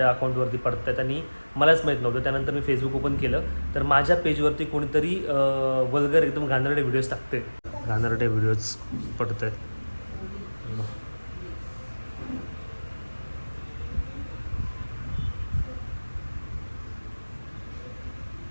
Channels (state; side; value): inverted; both; correlation -1.00